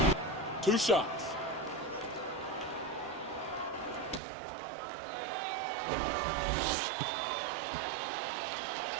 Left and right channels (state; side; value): drops out; left; at 4.2 s